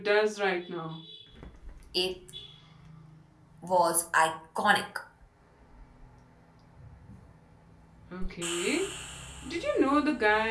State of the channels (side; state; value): both; identical; correlation 1.00